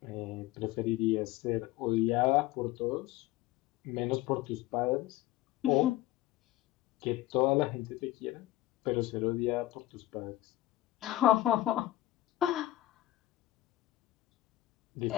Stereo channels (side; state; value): right; quieter; 16.0 dB